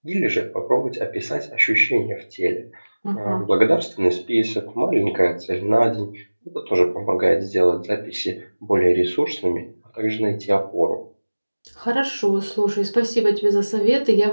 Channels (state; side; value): inverted; both; correlation -1.00